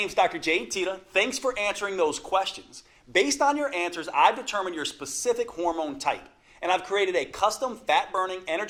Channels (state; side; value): identical; both; correlation 1.00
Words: Dr. Jade Tita. Thanks for answering those questions. Based on your answers, I've determined your specific hormone type, and I've created a custom fat-burning,